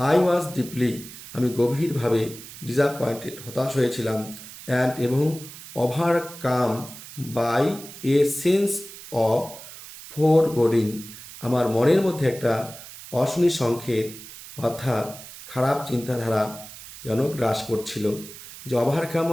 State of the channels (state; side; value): noise; right; hiss, 15 dB below the sound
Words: আই ওয়াজ ডিপলি আমি গভীরভাবে ডিসঅ্যাপয়েন্টেড হতাশ হয়েছিলাম, অ্যান্ড এবং overcome by a sense of foreboding আমার মনের মধ্যে একটা অশনি সংকেত অর্থাৎ খারাপ চিন্তাধারা যেন গ্রাস করছিল। যে ওভারকাম